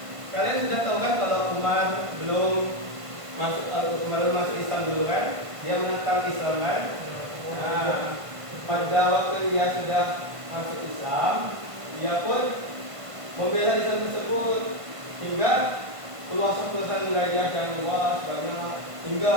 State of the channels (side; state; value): left; late; 1.5 ms